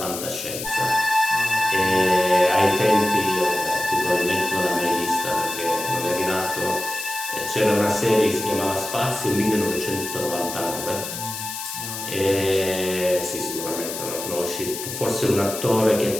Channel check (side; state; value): left; noise; hiss, 7 dB below the sound